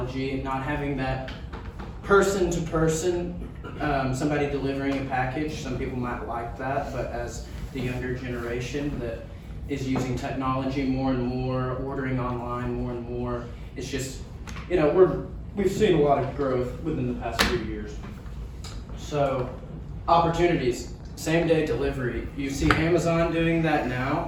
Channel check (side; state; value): both; identical; correlation 1.00